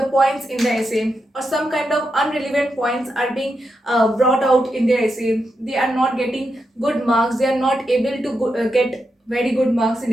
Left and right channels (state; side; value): normal; both; correlation 0.86